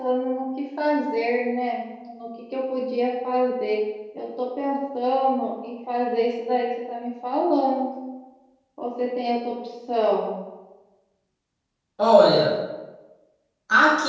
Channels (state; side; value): identical; both; correlation 1.00